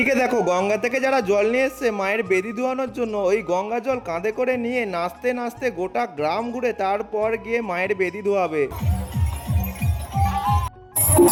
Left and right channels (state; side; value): identical; both; correlation 1.00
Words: দেখো গঙ্গা থেকে যারা জল নিয়ে এসছে মায়ের বেদি ধোয়ানোর জন্য, ওই গঙ্গা জল কাঁধে করে নিয়ে নাচতে নাচতে গোটা গ্রাম ঘুরে তারপর গিয়ে মায়ের বেদি ধোয়াবে।